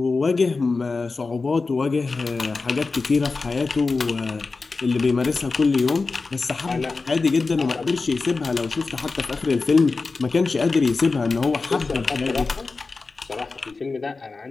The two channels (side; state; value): right; quieter; 4.0 dB